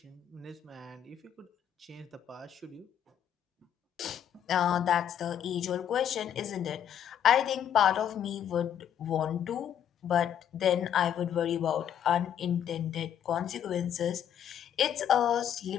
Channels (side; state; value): right; quieter; 9.5 dB